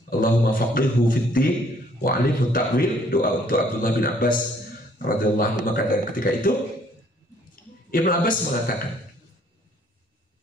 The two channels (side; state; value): both; normal; correlation 0.62